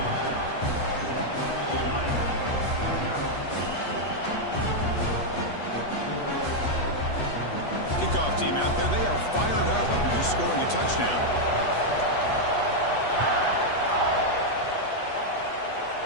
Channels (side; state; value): right; late; 8.3 ms